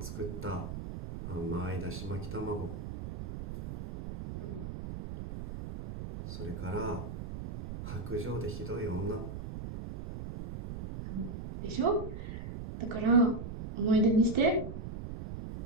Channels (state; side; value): noise; right; rumble, 8 dB below the sound